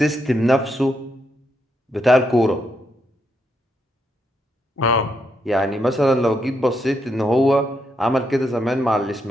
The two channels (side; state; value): both; normal; correlation 0.79